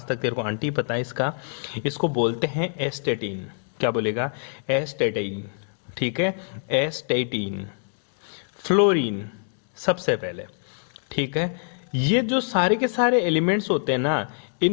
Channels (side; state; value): right; silent; digital silence